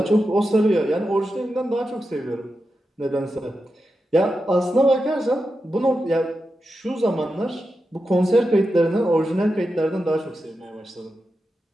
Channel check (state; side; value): normal; both; correlation 0.89